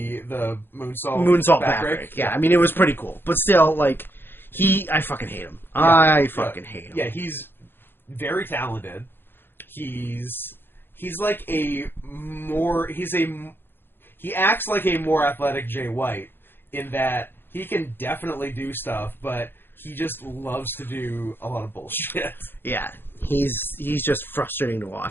moonsault backbreak. Yeah, I mean it was pretty cool, but still like I fucking hate him. Yeah. I fucking hate him. Yeah, he's very talented. He's like he acts like a more athletic Jay White in that he can definitely do stuff, but he just loves to do a lot of bullshit. Yeah, he's just frustrating to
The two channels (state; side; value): late; right; 0.10 ms